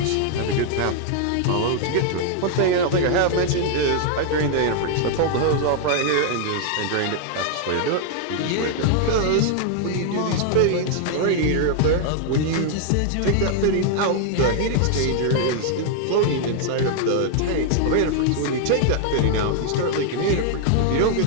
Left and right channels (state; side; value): different; both; correlation 0.00